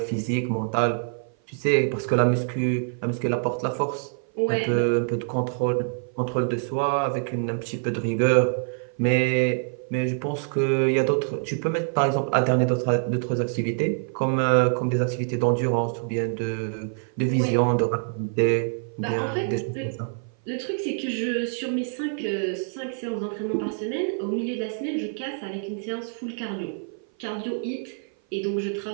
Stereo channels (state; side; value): silent; left; 56 dB below the other